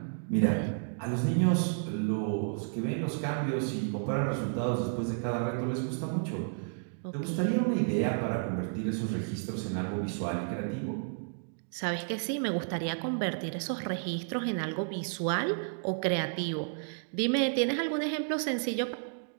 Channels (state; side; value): silent; left; digital silence